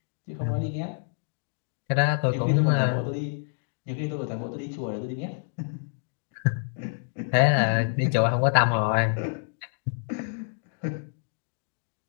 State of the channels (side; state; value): right; silent; digital silence